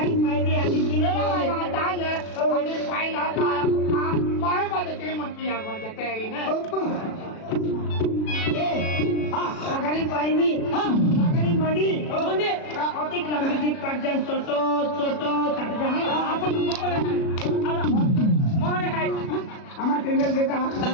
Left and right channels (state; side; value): late; right; 37 ms